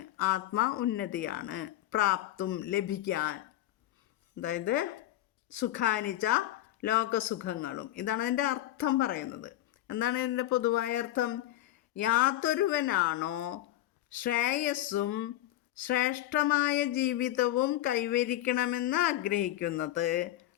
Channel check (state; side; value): quieter; right; 14.4 dB